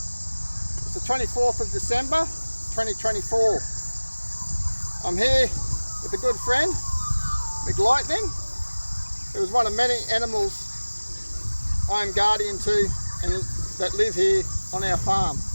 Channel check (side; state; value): both; inverted; correlation -1.00